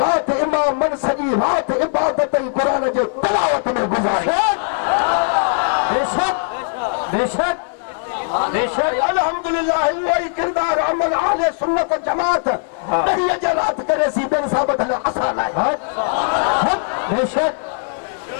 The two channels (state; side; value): silent; right; 65 dB below the other